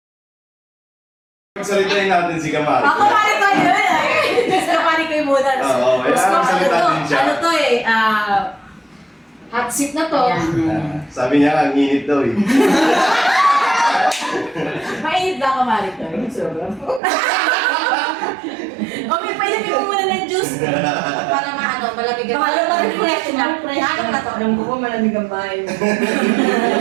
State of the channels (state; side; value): drops out; left; at 17.0 s